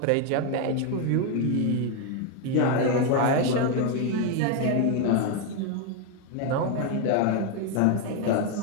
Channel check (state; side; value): different; both; correlation 0.01